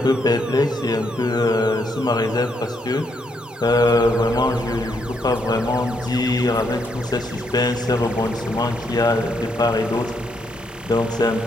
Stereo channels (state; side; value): normal; both; correlation 0.76